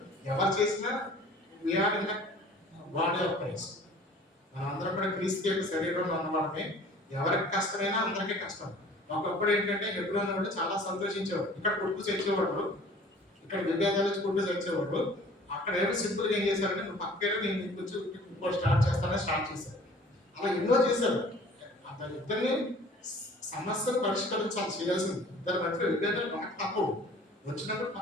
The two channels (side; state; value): both; normal; correlation 0.49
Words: ఎవరు చేసినా we are in the body of Christ. మనందరం కూడా క్రీస్తు యొక్క శరీరంలో ఉన్నవాళ్ళమే. ఎవరికి కష్టమైనా అందరికీ కష్టం. ఒకప్పుడు ఏంటంటే హెబ్రోన్ వాళ్ళు చాలా సంతోషించేవాడు. ఇక్కడ కొట్టు తెచ్చేవాడు, ఇక్కడ విభేదాలు కొట్టు తెచ్చేవాడు. అక్కడ ఏమో సింపుల్గా ఏం చేశారంటే నువ్వు పక్కన నేను ఇంకొంచెం ఇంకో స్టార్ట్ చేశారు. అలా ఎన్నో చేశారు. ఇద్దరిని సమస్యను పరిష్కరించాలి, చేయాల్సింది. ఇద్దరి మధ్య విభేదాలు బాగా తప్పవు. వచ్చినప్పుడు